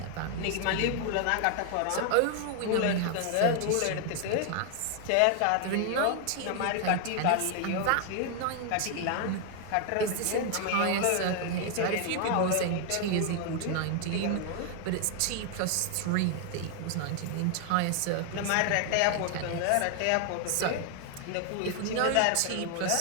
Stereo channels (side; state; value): both; different; correlation 0.00